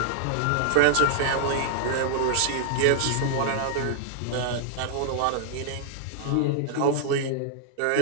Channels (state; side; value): different; both; correlation -0.01